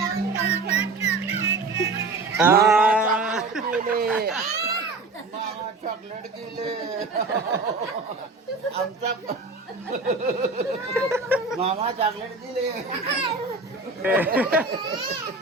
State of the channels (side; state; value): left; quieter; 3.6 dB